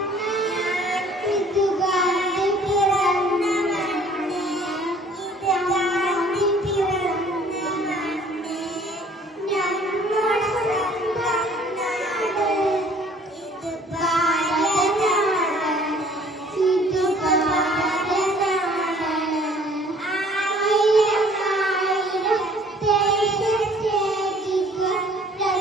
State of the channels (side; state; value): both; normal; correlation 0.55